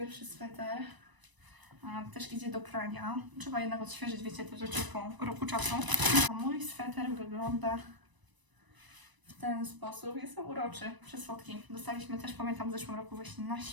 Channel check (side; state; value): left; late; 1.0 ms